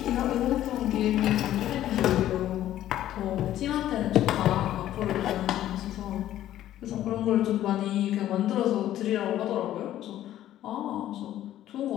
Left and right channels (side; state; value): right; quieter; 12.7 dB